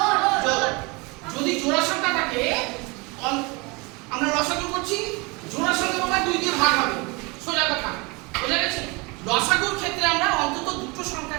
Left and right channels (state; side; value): quieter; left; 27.4 dB